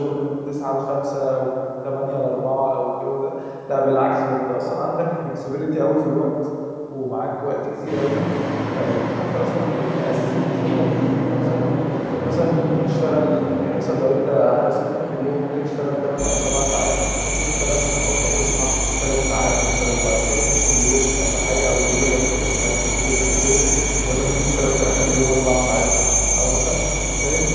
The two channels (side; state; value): both; identical; correlation 1.00